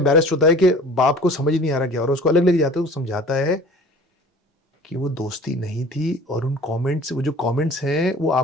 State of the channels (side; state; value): both; normal; correlation 0.45